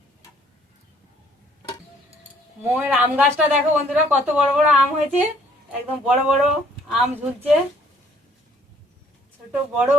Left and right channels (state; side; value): normal; both; correlation 0.61